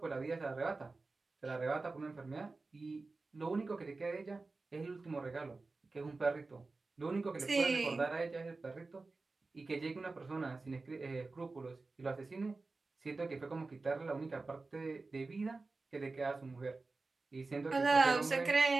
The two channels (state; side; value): quieter; left; 3.7 dB